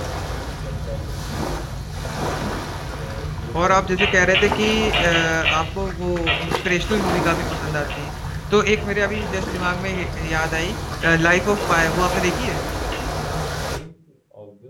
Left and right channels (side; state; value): both; identical; correlation 1.00